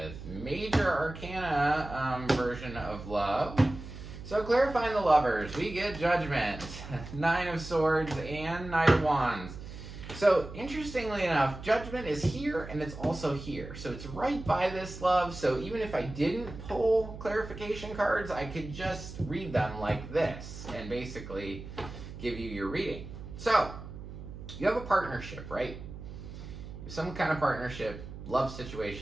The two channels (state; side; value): noise; right; hum, 12 dB below the sound